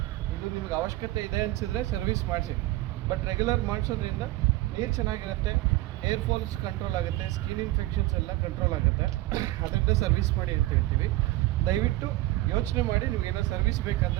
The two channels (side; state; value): left; quieter; 17.8 dB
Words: ಇದು ನಿಮ್ಗೆ ಅವಶ್ಯಕತೆ ಇದೆ ಅನಿಸಿದ್ರೆ ಸರ್ವಿಸ್ ಮಾಡಿಸಿ. ಬಟ್ ರೆಗ್ಯುಲರ್ ಮಾಡಿಸೋದ್ರಿಂದ ನೀರು ಚೆನ್ನಾಗಿರುತ್ತೆ, ಏರ್ ಫಾಲ್ಸ್ ಕಂಟ್ರೋಲ್ ಆಗುತ್ತೆ, ಸ್ಕಿನ್ ಇನ್ಫೆಕ್ಷನ್ಸ್ ಎಲ್ಲ ಕಂಟ್ರೋಲ್ ಆಗುತ್ತೆ. ಅದರಿಂದ ಸರ್ವಿಸ್ ಮಾಡಿ ಅಂತ ಹೇಳ್ತೀವಿ. ದಯವಿಟ್ಟು ಯೋಚನೆ ಮಾಡಿ, ನಿಮಗೇನೋ ಸರ್ವಿಸ್